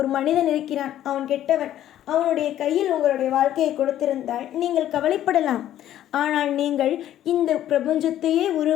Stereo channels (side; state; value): right; quieter; 12.1 dB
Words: மனிதன் இருக்கிறான், அவன் கெட்டவன், அவனுடைய கையில் உங்களுடைய வாழ்க்கையை கொடுத்திருந்தால் நீங்கள் கவலைப்படலாம். ஆனால் நீங்கள் இந்த பிரபஞ்சத்தையே